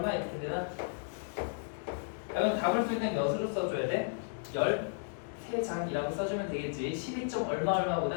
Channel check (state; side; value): silent; right; digital silence